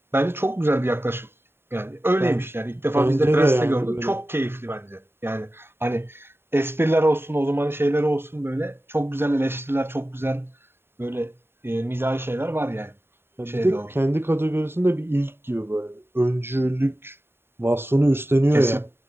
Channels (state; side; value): late; left; 0.11 ms